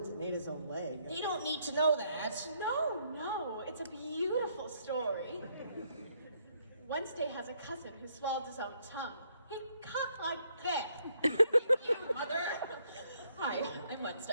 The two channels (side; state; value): both; inverted; correlation -0.71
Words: and ate his own leg. They don't need to know that. No, it's a beautiful story. Wednesday has a cousin who swallowed his own tongue. He coughed like that. You, mother. Hi, I'm